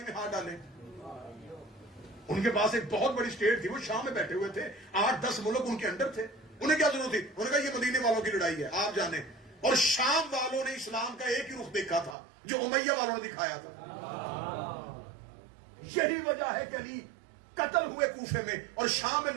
میں ہاتھ ڈالیں؟ ان کے پاس ایک بہت بڑی اسٹیٹ تھی، وہ شام میں بیٹھے ہوئے تھے، 8-10 ملک ان کے انڈر تھے، انہیں کیا ضرورت تھی؟ انہوں نے کہا یہ مدینے والوں کی لڑائی ہے آپ جانیں۔ اور شام والوں نے اسلام کا ایک ہی رخ دیکھا تھا جو امیہ والوں نے دکھایا تھا۔ یہی وجہ ہے کہ علی قتل ہوئے کوفے میں، اور شام میں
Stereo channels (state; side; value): drops out; left; at 12.2 s